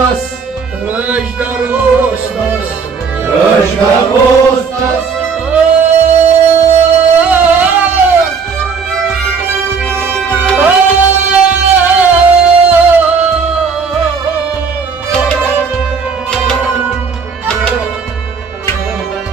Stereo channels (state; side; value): quieter; left; 5.6 dB